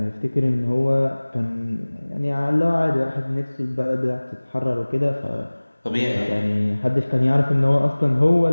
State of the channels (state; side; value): inverted; both; correlation -1.00